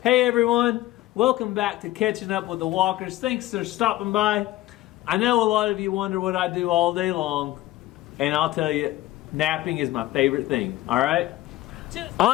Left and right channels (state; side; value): quieter; right; 16.2 dB